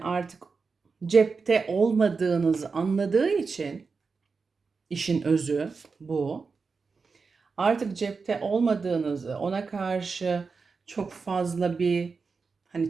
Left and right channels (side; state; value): left; quieter; 4.8 dB